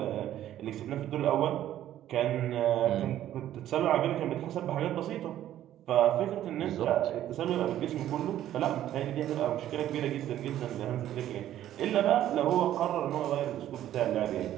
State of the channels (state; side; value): quieter; left; 12.3 dB